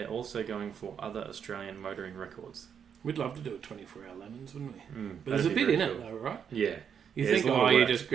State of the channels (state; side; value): quieter; left; 7.7 dB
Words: also going for other Australian motoring records. We'd love to do a 24-hour lemons, wouldn't we? But there's a bit in it, though, right? Yeah. You think, you just